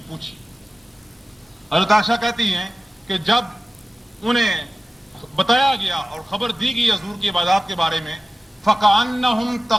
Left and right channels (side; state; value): both; normal; correlation 0.97